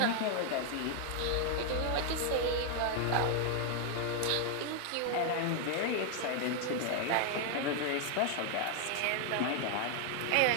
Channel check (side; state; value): both; different; correlation 0.00